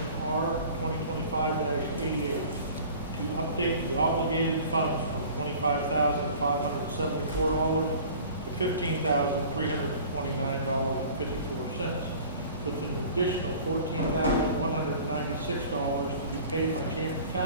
R 2025-88 to update the obligated funds from $25,574 to $15,329.54, with an additional $14,196 to be paid by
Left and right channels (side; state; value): both; inverted; correlation -0.45